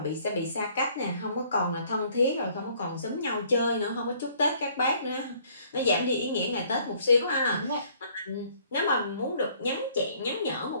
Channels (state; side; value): inverted; both; correlation -0.60